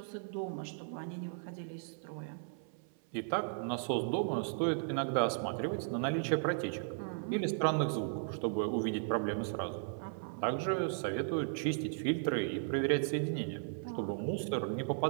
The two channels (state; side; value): silent; left; 54 dB below the other